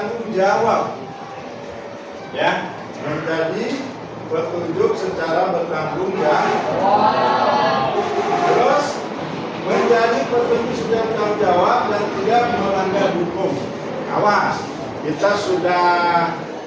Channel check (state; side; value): identical; both; correlation 1.00